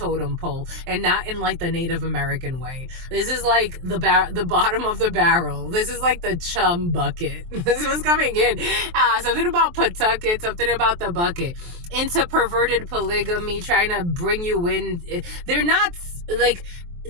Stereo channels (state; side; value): late; left; 23 ms